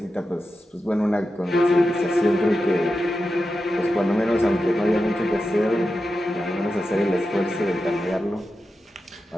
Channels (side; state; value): both; normal; correlation 0.91